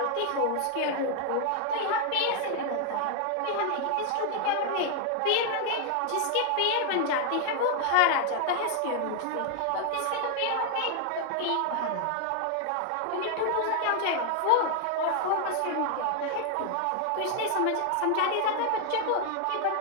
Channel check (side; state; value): both; different; correlation 0.00